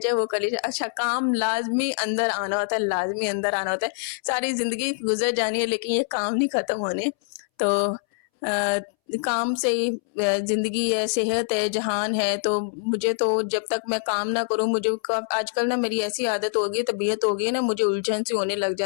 वो कर लिया जाए, अच्छा काम लाज़मी अंदर आना होता है, लाज़मी अंदर आना होता है। सारी ज़िंदगी गुज़र जानी है लेकिन ये काम नहीं ख़त्म होने। तो अ, काम से ही ज़िंदगी है, सेहत है, जहान है, तो मुझे तो जब तक मैं काम ना करूँ मुझे क आजकल ना मेरी ऐसी आदत हो गई है, तबीयत हो गई है ना, मुझे उलझन सी होने लग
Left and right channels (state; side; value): silent; right; 62 dB below the other